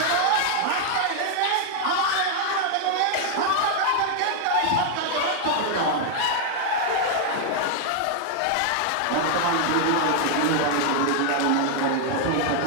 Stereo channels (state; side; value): different; both; correlation 0.00